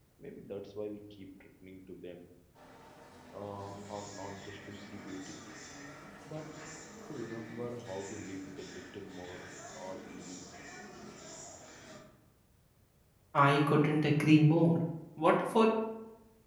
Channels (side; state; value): both; identical; correlation 1.00